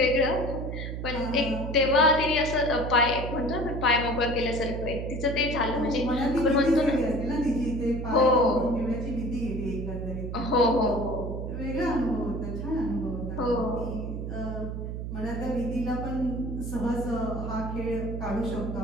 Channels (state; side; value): noise; right; hum, 5 dB below the sound